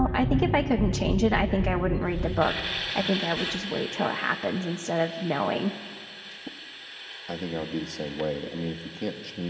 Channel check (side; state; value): both; identical; correlation 1.00